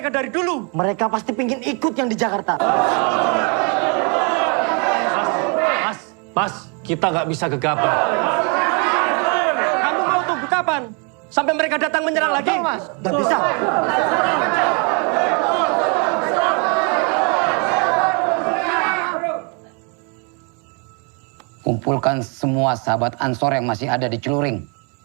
dari dulu. Mereka pasti pingin ikut yang di Jakarta. Mas, kita nggak bisa gegabah. Kamu mau tunggu kapan? Sampai mereka datang menyerang lagi? Mas, nggak bisa. Kumpulkan semua sahabat Ansor yang masih ada di Celuring.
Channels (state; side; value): quieter; left; 35.4 dB